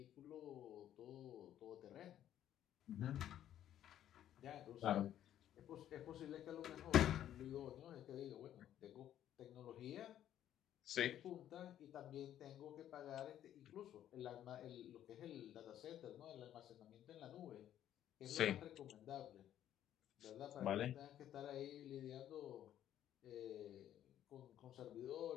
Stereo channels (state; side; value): quieter; right; 11.3 dB